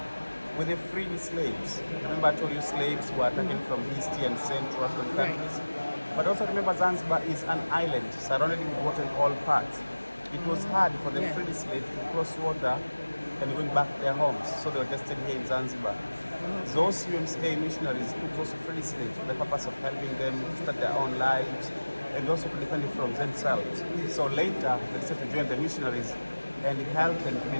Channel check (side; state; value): both; inverted; correlation -1.00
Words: with the free slaves. Remember I told you slaves were taken from East and Central African countries. But also remember Zanzibar is an island surrounded with water in all parts. It was hard for the free slaves to cross water and going back to their homes. So they were just staying here in Zanzibar. Those UMCA missionaries took those free slaves for the purpose of helping them start their own lives and also to defend it from themselves. So later they decided to join the missionaries and help them to